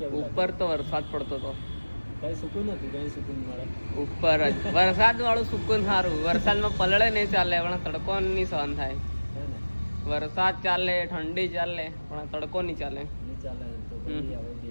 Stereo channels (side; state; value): both; inverted; correlation -1.00